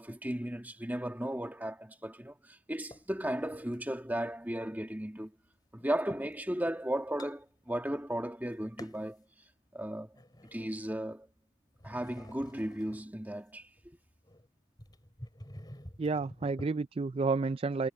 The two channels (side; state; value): both; normal; correlation 0.81